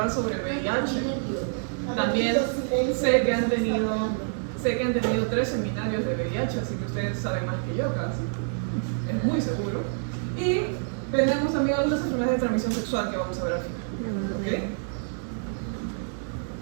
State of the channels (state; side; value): silent; left; digital silence